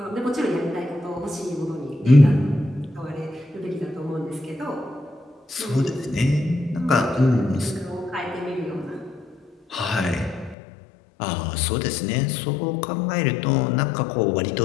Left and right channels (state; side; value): drops out; right; at 10.6 s